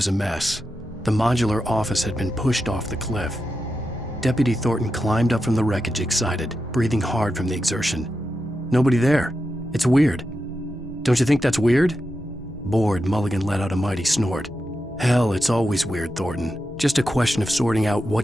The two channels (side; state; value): both; normal; correlation 0.88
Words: a mess. The modular office had been pushed off the cliff. Deputy Thornton climbed up from the wreckage excited, breathing hard from the exertion. Nobody there. It's weird. Don't you think that's weird? Bored, Mulligan let out a mighty snort. Hell, it's always weird, Thornton. Just a question of sorting out